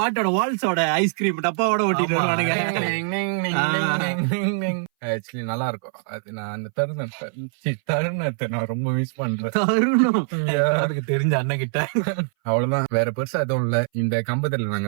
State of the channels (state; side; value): silent; left; 60 dB below the other